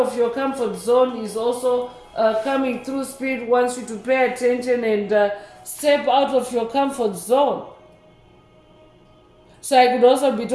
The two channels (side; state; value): both; identical; correlation 1.00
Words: your comfort zone is also coming through. Spirit wants you to pay attention and step out of your comfort zone. So I could also be